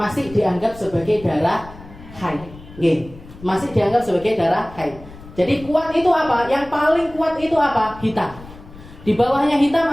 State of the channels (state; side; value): noise; left; rumble, 18 dB below the sound